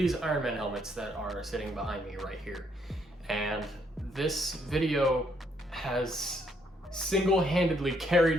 Iron Man helmets that are sitting behind me right here. And this video has single-handedly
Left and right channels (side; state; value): both; normal; correlation 0.71